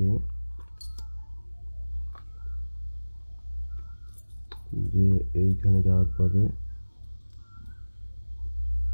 যে এইখানে যাওয়ার পরে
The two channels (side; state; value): both; inverted; correlation -1.00